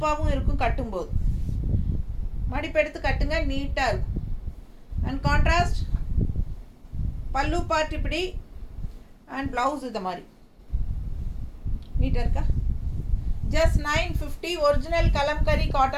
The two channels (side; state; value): both; identical; correlation 1.00